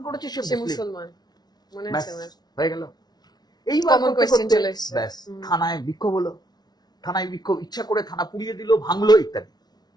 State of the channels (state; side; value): late; right; 0.19 ms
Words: করেছে সে সে মুসলিম, মুসলমান, মনে ব্যাস হচ্ছে আমার। হয়ে গেল। এইবার Common করতে question করতে চলে এসছে। ব্যাস হুম। থানায় বিক্ষোভ হলো, থানায় বিক্ষোভ, ইচ্ছা করে থানা পুড়িয়ে দিল, ভাঙলো ইত্যাদি।